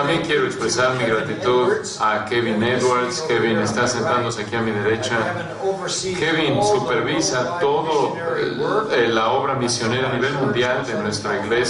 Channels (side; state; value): both; identical; correlation 1.00